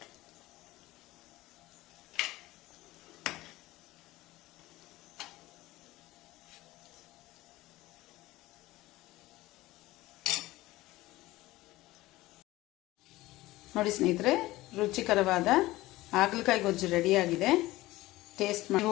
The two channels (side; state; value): right; quieter; 18.2 dB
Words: ನೋಡಿ ಸ್ನೇಹಿತರೆ, ರುಚಿಕರವಾದ ಹಾಗಲಕಾಯಿ ಗೊಜ್ಜು ರೆಡಿಯಾಗಿದೆ. ಟೇಸ್ಟ್